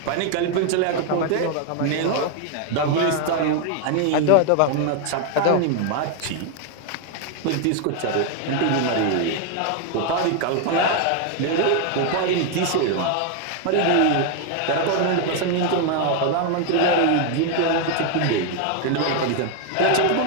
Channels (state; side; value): different; both; correlation 0.01